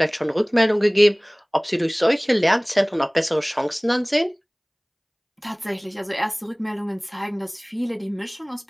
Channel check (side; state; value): both; identical; correlation 1.00